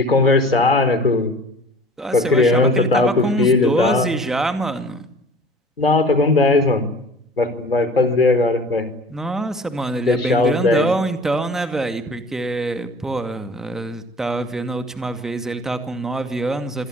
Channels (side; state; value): both; normal; correlation 0.45